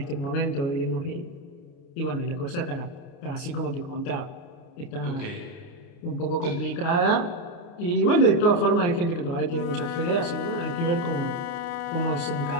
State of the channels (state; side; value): late; right; 29 ms